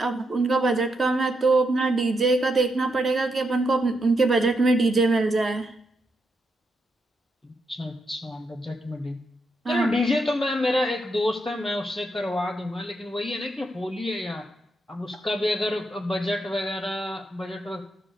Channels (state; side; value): normal; both; correlation 0.81